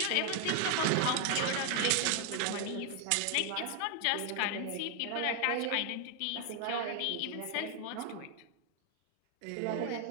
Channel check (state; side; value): different; both; correlation 0.00